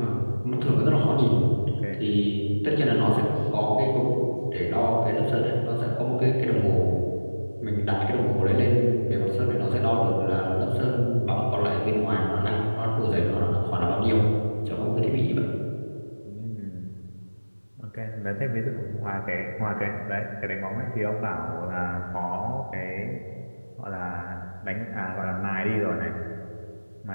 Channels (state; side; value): inverted; both; correlation -1.00